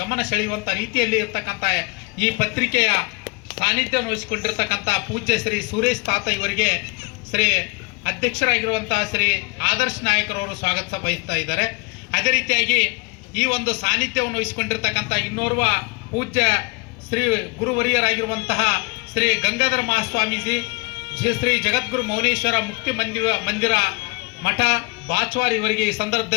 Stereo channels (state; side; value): quieter; right; 29.6 dB